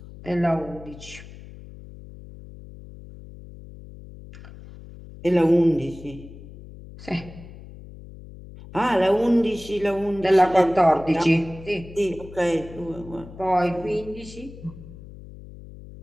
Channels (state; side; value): noise; left; hum, 17 dB below the sound